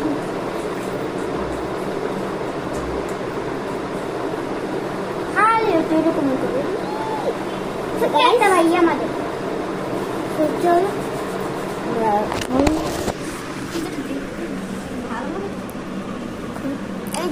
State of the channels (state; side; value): identical; both; correlation 1.00